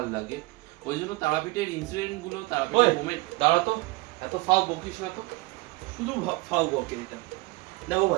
লাগে। ওই জন্য তারাপীঠের ইনসিডেন্টগুলো, তারাপীঠের মোমেন্ট। দাঁড়া তো, এত ফাও বকিস না তো, শুধু ফাও বকে এটা। দেখো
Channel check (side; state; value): left; quieter; 23.3 dB